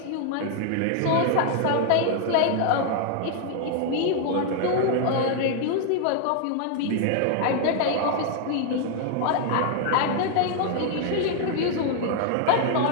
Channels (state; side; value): different; both; correlation 0.00